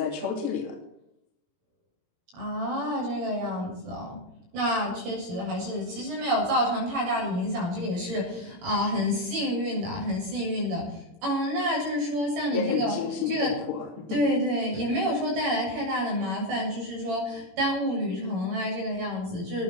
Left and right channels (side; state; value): left; late; 18 ms